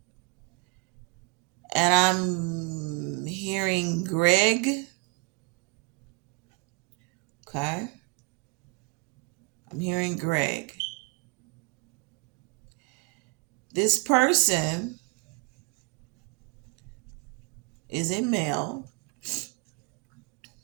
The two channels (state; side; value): quieter; left; 30.3 dB